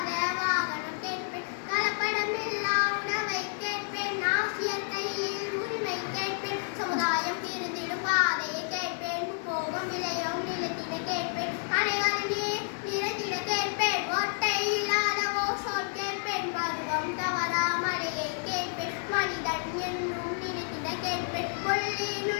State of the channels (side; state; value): right; silent; digital silence